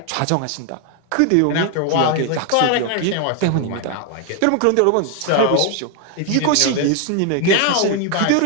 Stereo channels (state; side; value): different; both; correlation 0.01